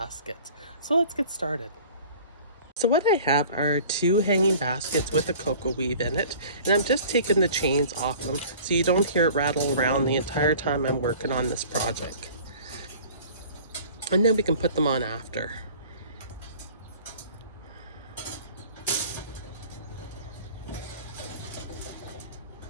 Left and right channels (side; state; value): both; inverted; correlation -0.46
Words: So let's get started. So what I have are two hanging baskets with a cocoa weave in it, and I'm just taking the chains off them so you don't hear it rattle around the entire time I'm working on this project. And then we can put them on after.